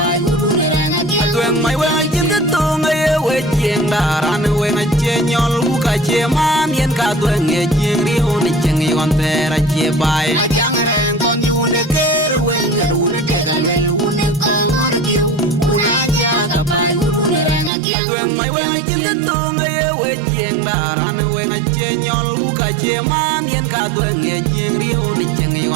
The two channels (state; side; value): drops out; left; at 17.7 s